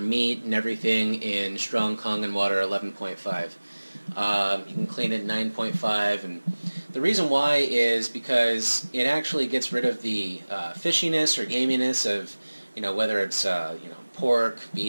and everything in strong Kangen water 11.5. You can clean it 9.5, and the reason why is because it actually gets rid of the fishiness or gaminess of, whether it's pork,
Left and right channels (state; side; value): inverted; both; correlation -1.00